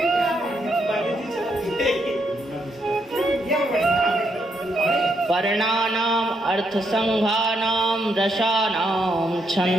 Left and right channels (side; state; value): both; normal; correlation 0.77